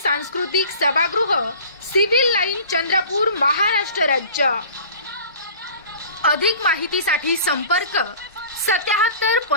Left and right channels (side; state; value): both; inverted; correlation -0.44